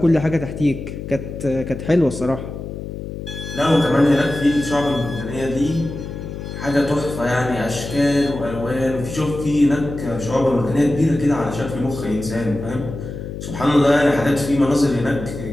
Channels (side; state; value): left; noise; hum, 8 dB below the sound